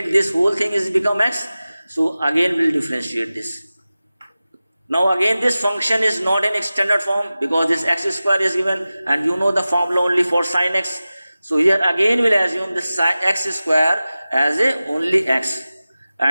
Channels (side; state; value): both; inverted; correlation -0.96